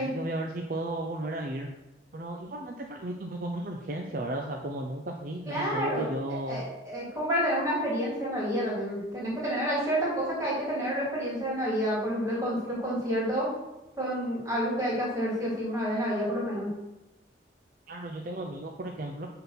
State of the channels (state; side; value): normal; both; correlation 0.39